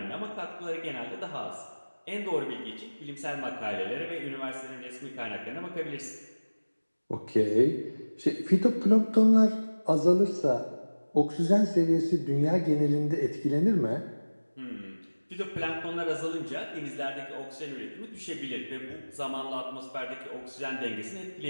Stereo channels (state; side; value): inverted; both; correlation -1.00